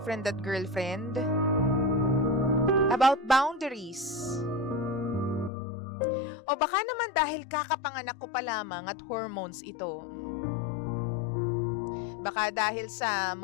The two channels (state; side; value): drops out; right; at 5.5 s